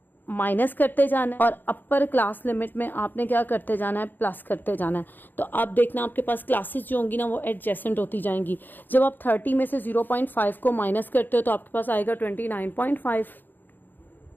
माइनस करते जाना है और अपर क्लास लिमिट में आपने क्या करते जाना है, प्लस करते जाना है। तो आप देखना आपके पास क्लासेस जो होंगी ना वो एडजेसेंट होती जाएंगी। जब आप 30 में से 0.5 को माइनस करते हो तो आपके पास आएगा 29.5,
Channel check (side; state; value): right; late; 0.090 ms